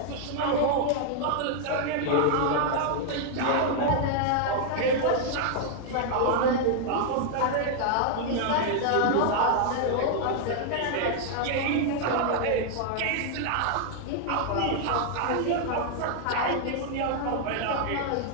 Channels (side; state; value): both; different; correlation 0.00